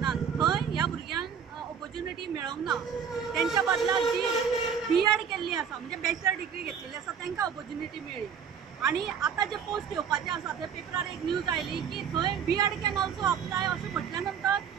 थंय ह्या भुरग्यांक ऑपॉर्च्युनिटी मेळोंक ना। तेंच्या बदलाक जी B.Ed केल्ली आसा म्हणजे बॅचलर डिग्री घेतलेली आसा तांकां ऑपॉर्च्युनिटी मेळ्ळी। आणि आता जे पोस्ट येवपाचे आसा ते पेपरार एक न्यूज आयली की थंय B.Ed कॅन ऑल्सो अप्लाय अशें म्हटल्या नंतर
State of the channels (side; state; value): left; quieter; 7.3 dB